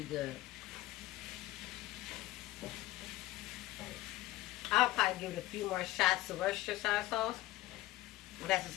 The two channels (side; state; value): right; quieter; 16.9 dB